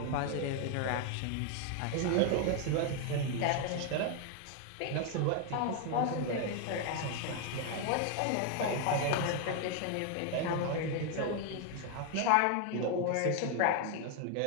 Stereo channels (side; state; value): both; different; correlation 0.01